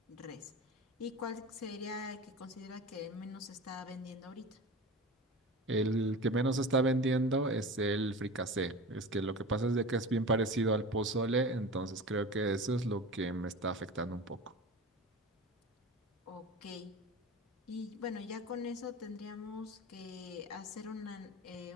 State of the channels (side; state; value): both; normal; correlation 0.32